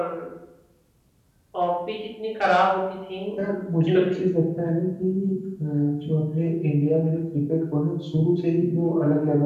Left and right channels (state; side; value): identical; both; correlation 1.00